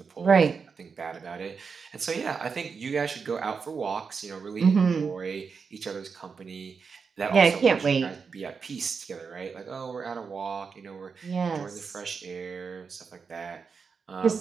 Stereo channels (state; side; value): quieter; left; 5.5 dB